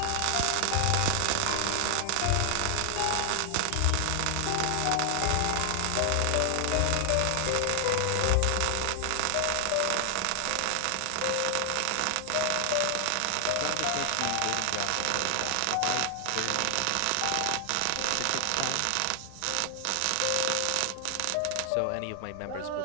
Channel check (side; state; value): both; different; correlation 0.00